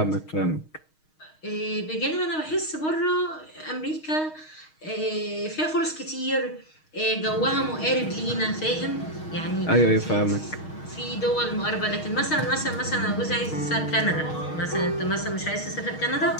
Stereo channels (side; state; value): right; late; 6.4 ms